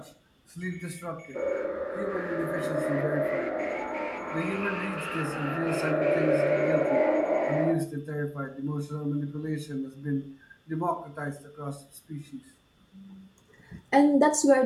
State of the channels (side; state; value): both; identical; correlation 1.00